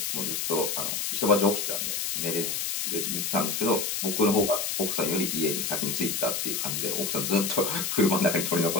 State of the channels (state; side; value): noise; left; hiss, 1 dB below the sound